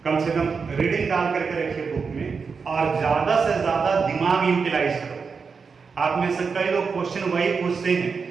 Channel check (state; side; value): quieter; left; 5.3 dB